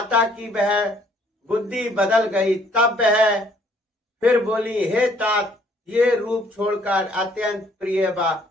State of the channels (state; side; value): normal; both; correlation 0.62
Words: की वह बुद्धि बदल गई। तब वह फिर बोली, हे तात ये रूप छोड़कर अत्यंत प्रिय